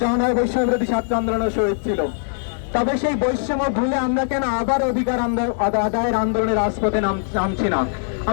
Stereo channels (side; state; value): right; silent; digital silence